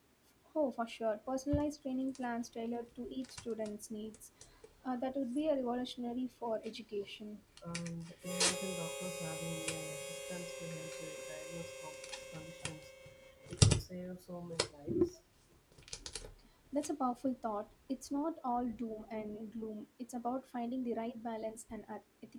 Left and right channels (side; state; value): both; identical; correlation 1.00